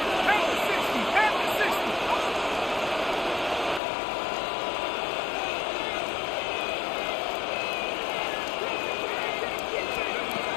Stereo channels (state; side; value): drops out; right; at 3.8 s